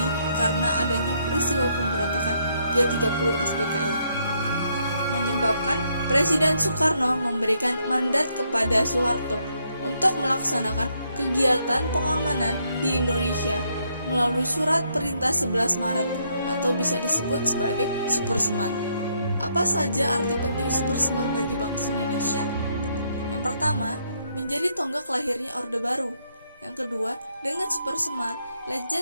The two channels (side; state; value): both; inverted; correlation -0.73